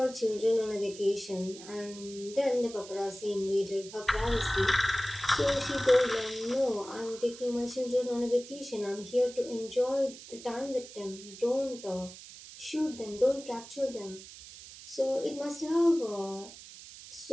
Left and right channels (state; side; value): noise; right; hiss, 16 dB below the sound